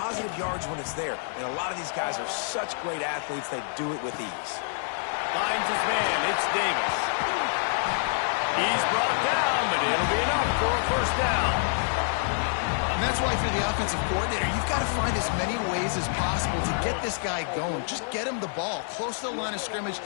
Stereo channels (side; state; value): right; silent; digital silence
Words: yards when it's there. And a lot of these guys are such great athletes, they do it with ease. Finds his man. It's Davis. He's brought down, but it'll be enough for a first down. And that's why, if you're the offensive coordinator, you've got to find as many ways as possible to get this guy going. Just get him the ball close to the line of scrimmage.